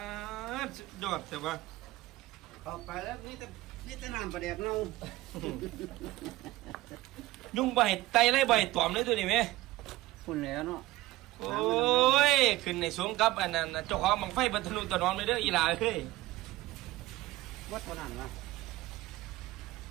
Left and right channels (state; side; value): quieter; left; 17.9 dB